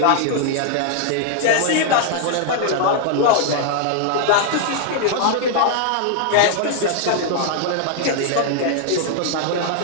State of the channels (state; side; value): different; both; correlation -0.01